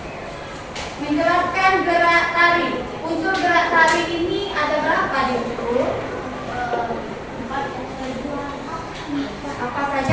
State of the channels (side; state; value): both; identical; correlation 1.00